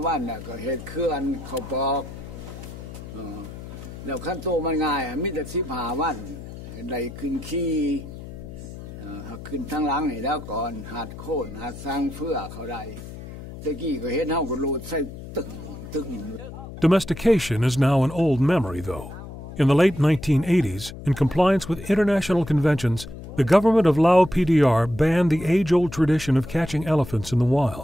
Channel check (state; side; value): noise; left; hum, 12 dB below the sound